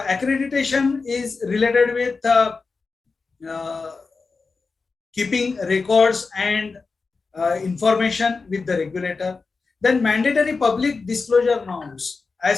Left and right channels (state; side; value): quieter; right; 4.4 dB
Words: is related with keeping records and information with the regulator. Then mandatory public disclosure norms.